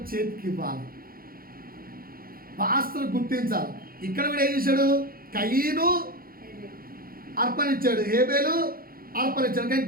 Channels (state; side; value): late; left; 0.42 ms